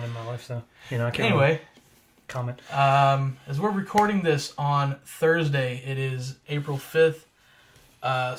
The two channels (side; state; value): both; identical; correlation 1.00